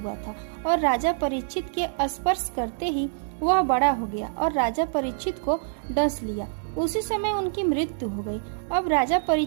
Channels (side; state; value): left; silent; digital silence